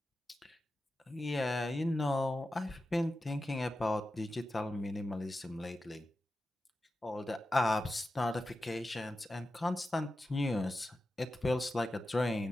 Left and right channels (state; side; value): normal; both; correlation 0.92